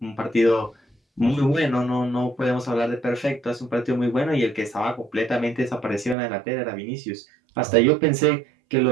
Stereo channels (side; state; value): left; drops out; at 6.2 s